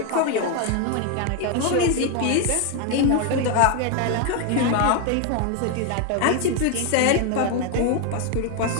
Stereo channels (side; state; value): both; different; correlation 0.01